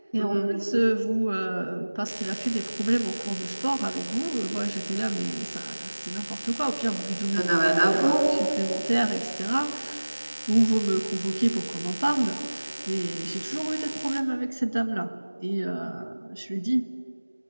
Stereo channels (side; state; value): both; inverted; correlation -1.00